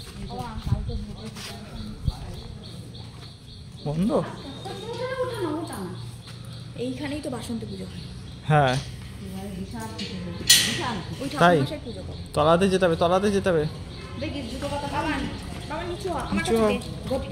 বন্ধ? এইখানেই তো বাসন্তী পুজো হয়। হ্যাঁ তাই, তলাতে যেতে হবে, তলাতে যেতে হবে।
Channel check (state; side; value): identical; both; correlation 1.00